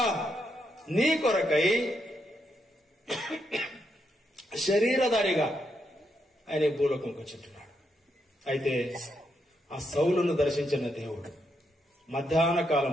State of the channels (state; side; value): normal; both; correlation 0.80